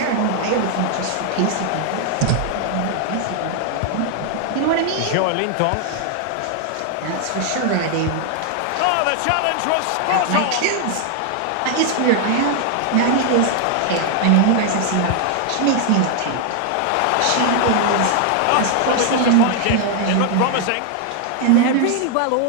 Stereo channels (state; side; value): different; both; correlation 0.00